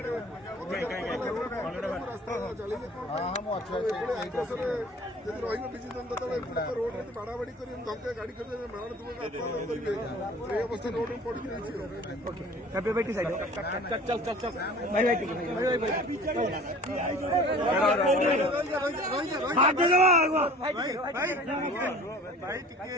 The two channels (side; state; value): both; normal; correlation 0.45